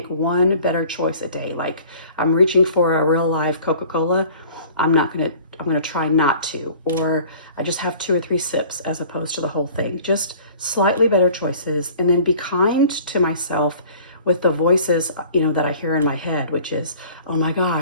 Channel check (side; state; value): both; inverted; correlation -0.48